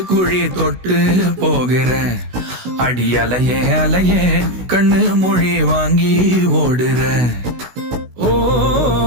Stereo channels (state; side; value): late; left; 16 ms